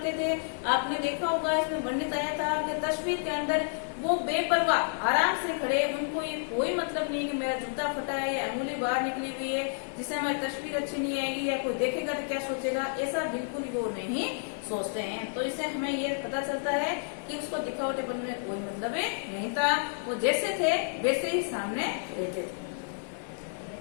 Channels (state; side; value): silent; right; digital silence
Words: थे। आपने देखा होगा, इसमें वर्णित आया था कि तस्वीर के अंदर वो बेपरवाह आराम से खड़े, उनको ये कोई मतलब नहीं कि मेरा जूता फटा है या अंगुली बाहर निकली हुई है, जिससे हमारी तस्वीर अच्छी नहीं आएगी या कोई देखेगा तो क्या सोचेगा, ऐसा बिल्कुल वो नहीं सोचते हैं। तो इससे हमें ये पता चलता है कि उसको दिखावटेपन में कोई मतलब नहीं था, वो जैसे थे वैसे ही सामने रहते थे।